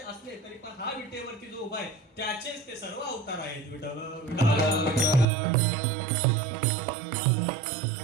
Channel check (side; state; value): left; drops out; at 5.2 s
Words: असले तरी पण हा विटेवरती जो उभा आहे त्याचेच ते सर्व अवतार आहेत विठ्ठल